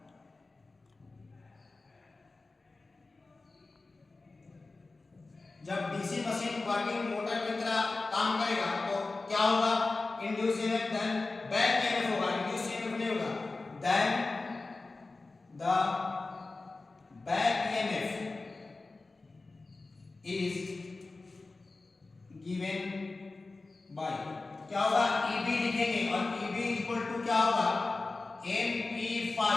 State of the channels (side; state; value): right; quieter; 3.5 dB